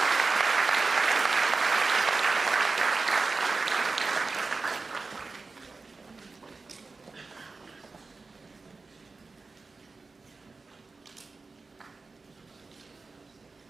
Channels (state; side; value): quieter; left; 4.0 dB